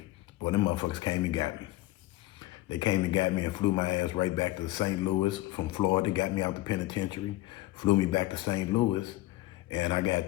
Boy, them motherfuckers came and got me. They came and got me and flew my ass right back to St. Louis from Florida, got me out the penitentiary, flew me back to St. Louis, and I got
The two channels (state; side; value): quieter; right; 17.3 dB